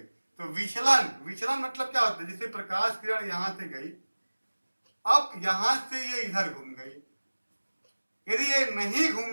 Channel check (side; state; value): both; inverted; correlation -1.00